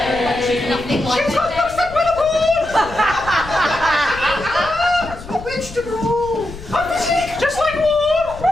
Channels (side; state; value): left; noise; rumble, 15 dB below the sound